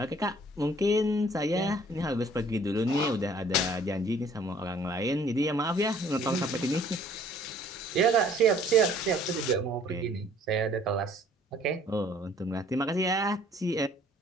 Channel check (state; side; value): normal; both; correlation 0.57